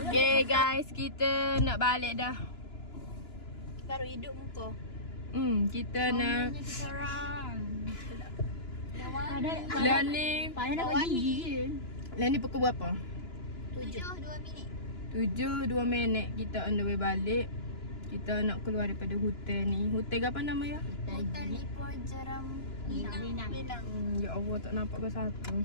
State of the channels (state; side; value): late; right; 2.9 ms